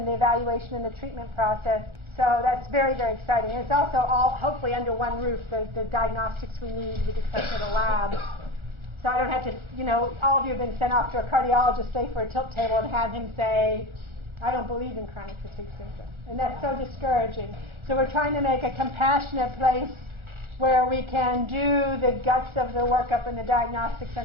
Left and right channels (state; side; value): late; left; 1.4 ms